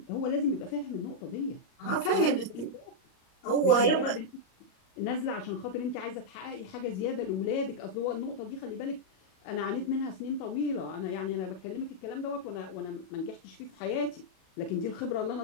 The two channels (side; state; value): right; late; 37 ms